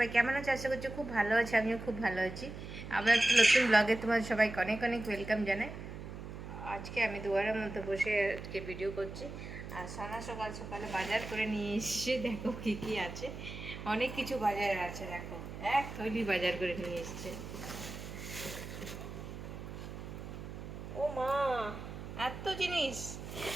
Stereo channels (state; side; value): noise; right; hum, 10 dB below the sound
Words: কেমন আছো? আশা করছি খুব ভালো আছে। আমিও খুব ভালো আছি। আবার একটা নতুন ব্লগে তোমার সবাইকে অনেক অনেক ওয়েলকাম জানাই। আজকে আমি দুয়ারের মধ্যে বসে আজকে ভিডিও করছি। আর সানা সকাল সকালে বাজার করে নিয়ে এসছে। দেখো কী কী আছে, অনেক কিছু বাজারে আছে। দেখো, এক থলি বাজার করে নিয়ে এসছে। ও মা, এত জিনিস!